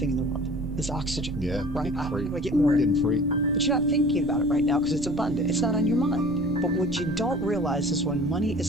in the world is oxygen. Yeah, right? free. How do I get more? Getting free. But you're not thinking about it right now because it's abundant. It's not on your mind. But what you don't realize is when money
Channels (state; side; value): noise; right; rumble, 11 dB below the sound